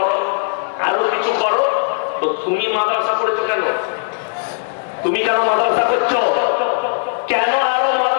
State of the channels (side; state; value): right; silent; 67 dB below the other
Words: আরো কিছু করো। তো তুমি মাদ্রাসা করেছো কেন? তুমি কেন মাদ্রাসা করছো? কেন আরো